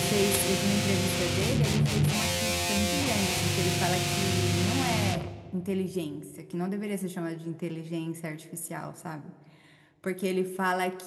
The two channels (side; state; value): both; identical; correlation 1.00